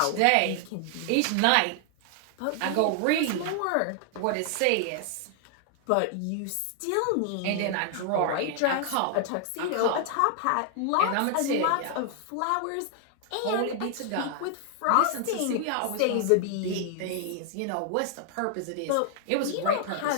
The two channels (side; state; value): both; different; correlation 0.00